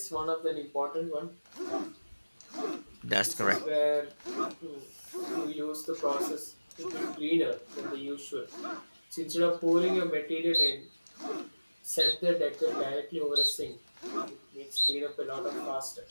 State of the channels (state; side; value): inverted; both; correlation -1.00